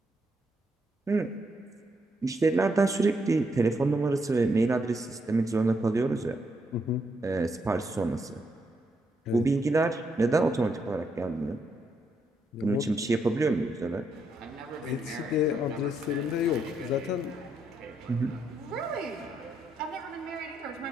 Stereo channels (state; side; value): normal; both; correlation 0.78